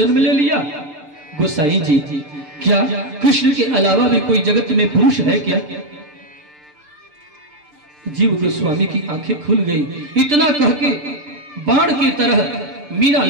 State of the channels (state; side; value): late; left; 6.7 ms